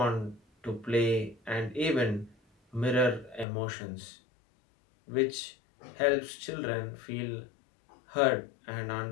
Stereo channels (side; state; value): right; drops out; at 3.5 s